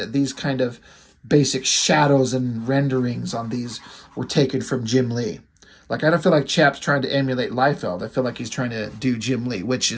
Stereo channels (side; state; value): both; identical; correlation 1.00